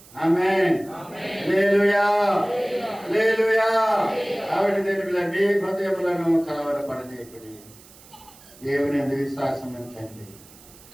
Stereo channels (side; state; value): right; noise; hiss, 23 dB below the sound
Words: ఆమేన్. హల్లెలూయా. హల్లెలూయా. కాబట్టి మీ హృదయములను కలవరపడనీయకుడి. దేవుని యందు విశ్వాసం ఉంచండి.